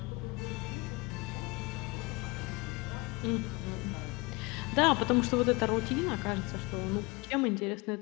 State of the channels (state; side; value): quieter; right; 25.0 dB